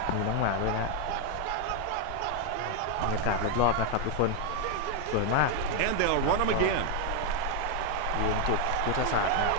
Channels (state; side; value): different; both; correlation 0.01